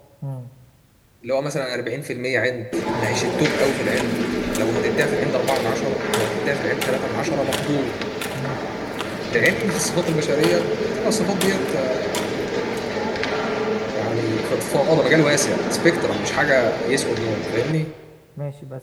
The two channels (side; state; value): both; identical; correlation 1.00